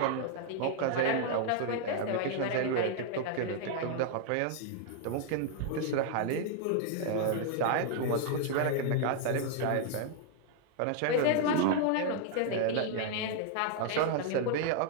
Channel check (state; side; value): different; both; correlation 0.00